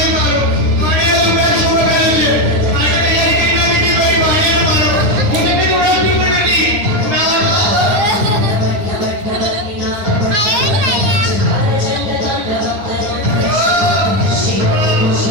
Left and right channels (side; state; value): left; late; 9.7 ms